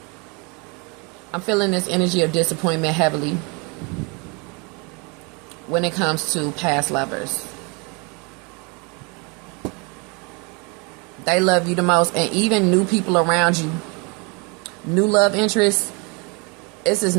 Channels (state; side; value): quieter; left; 31.0 dB